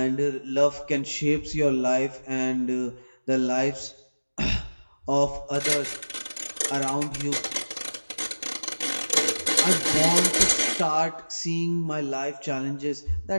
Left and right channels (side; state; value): both; inverted; correlation -1.00